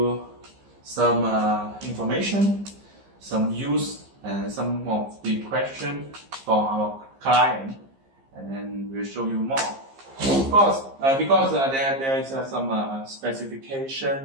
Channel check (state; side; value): late; left; 15 ms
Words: some information, some use, and some of the questions for our client, and then we'll show you more. Of course, because there is some